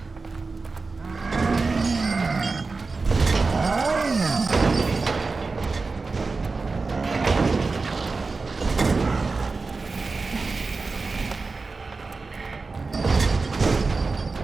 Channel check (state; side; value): quieter; left; 4.0 dB